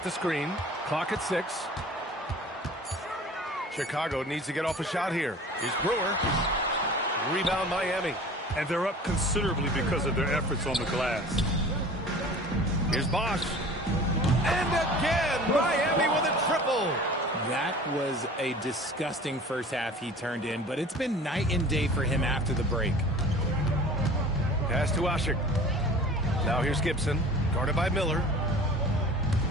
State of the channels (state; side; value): normal; both; correlation 0.43